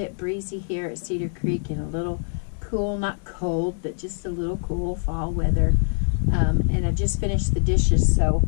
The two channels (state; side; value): silent; right; 63 dB below the other